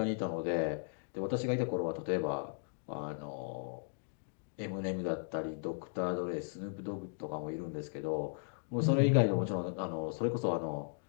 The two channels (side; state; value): right; silent; digital silence